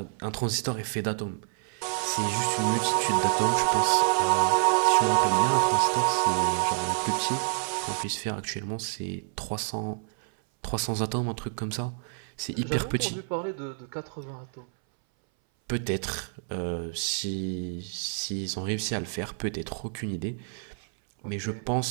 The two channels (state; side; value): silent; left; 59 dB below the other